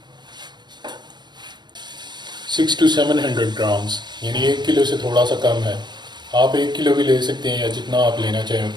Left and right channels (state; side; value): late; left; 0.21 ms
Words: 600 to 700 ग्राम्स, यानी 1 किलो से थोड़ा सा कम है। आप 1 किलो भी ले सकते हैं या जितना आप लेना चाहें